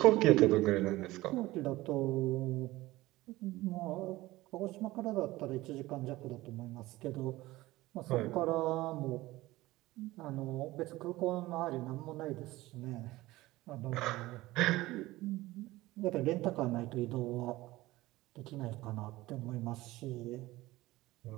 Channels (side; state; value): left; quieter; 18.3 dB